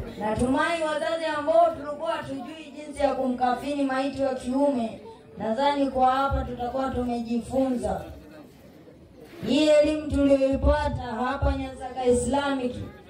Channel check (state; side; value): identical; both; correlation 1.00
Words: Natumai wazazi ambao tulikuwa hatujui jinsi ya kumkafini maiti wa kiume, nadhani kwa hapa tutakuwa tumejifunza. Hii elimu tuliyoipata hapa Nyansaka Islamic,